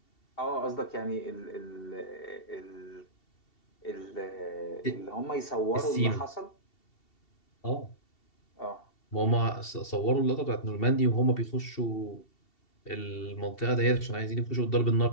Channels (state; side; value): late; right; 2.7 ms